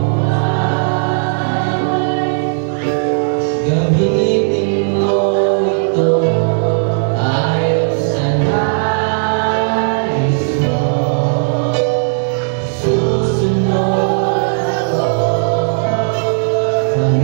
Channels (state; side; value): silent; left; digital silence